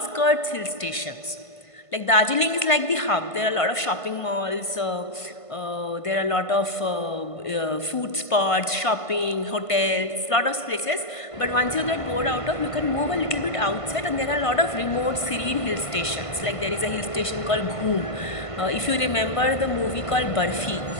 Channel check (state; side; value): late; right; 1.5 ms